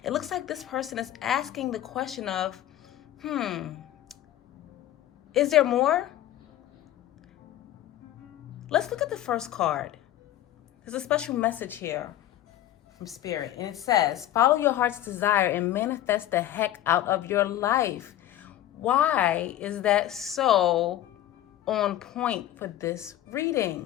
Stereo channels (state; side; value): quieter; right; 13.0 dB